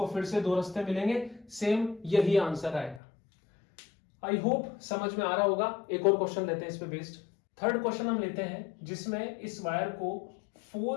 फिर से दो रास्ते मिलेंगे, सेम यही आंसर आएगा। आई होप समझ में आ रहा होगा। एक और क्वेश्चन लेते हैं इस पे बेस्ड। थर्ड क्वेश्चन हम लेते हैं जिसमें इस वायर को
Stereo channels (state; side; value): drops out; right; at 3.0 s